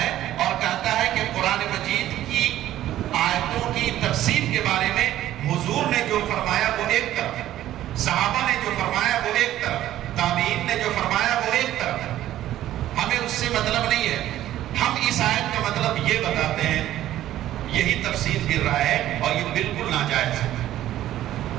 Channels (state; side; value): quieter; left; 13.2 dB